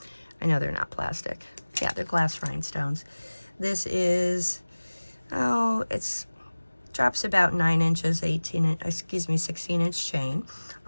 I know they're not plastic. Yeah, they're glass rhinestones. This is, it's drops about 9 inches, 16-inch chain.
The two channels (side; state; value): both; inverted; correlation -1.00